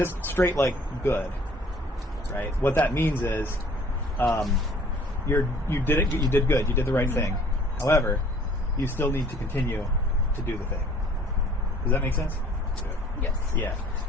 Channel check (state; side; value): normal; both; correlation 0.55